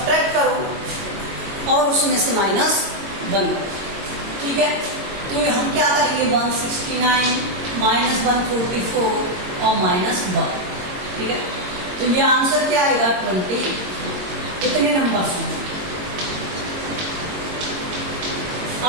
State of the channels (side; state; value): left; late; 22 ms